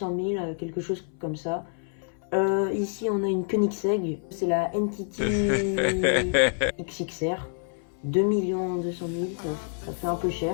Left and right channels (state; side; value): silent; right; 60 dB below the other